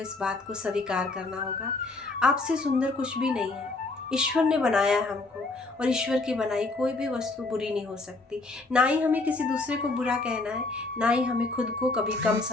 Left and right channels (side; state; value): right; quieter; 3.4 dB